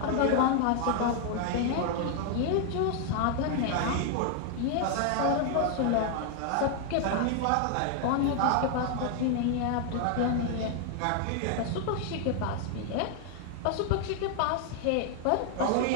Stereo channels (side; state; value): both; different; correlation 0.00